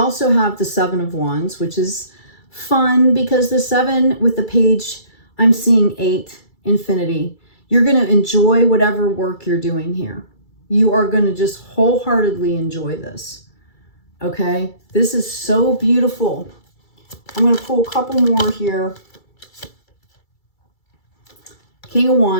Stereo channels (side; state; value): right; late; 2.3 ms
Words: have the 7 of Wands, which is fun because the 7 with the Page, I'm seeing 8, infinity. You're going to enjoy whatever work you're doing here. You are going to just wholeheartedly enjoy this. Okay. This is so beautiful. I'm going to pull a couple more here. King of